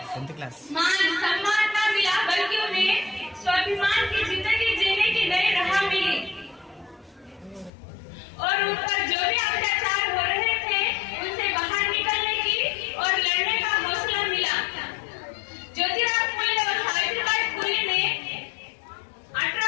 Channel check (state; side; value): drops out; right; at 7.7 s